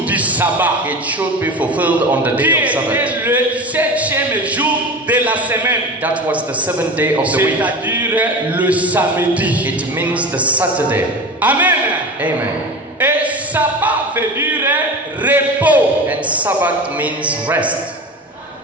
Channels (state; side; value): normal; both; correlation 0.30